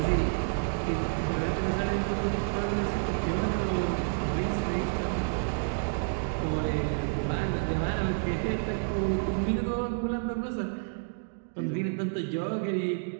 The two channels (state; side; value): silent; left; digital silence